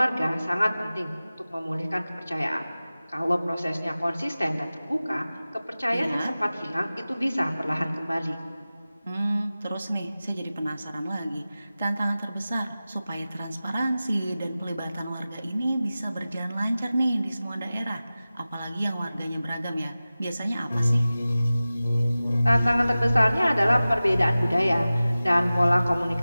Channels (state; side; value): inverted; both; correlation -0.96